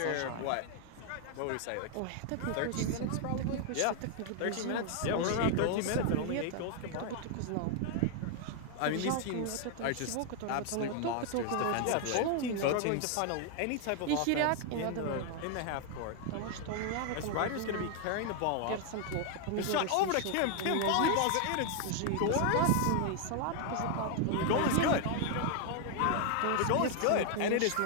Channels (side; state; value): both; different; correlation 0.00